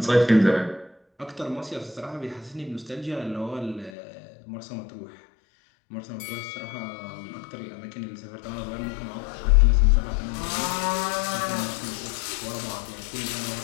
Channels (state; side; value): drops out; right; at 3.9 s